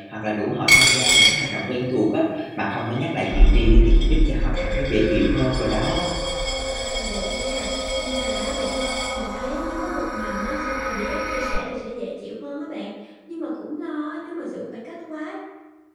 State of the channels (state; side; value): identical; both; correlation 1.00